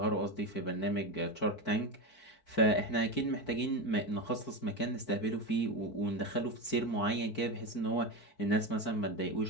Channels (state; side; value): late; right; 4.6 ms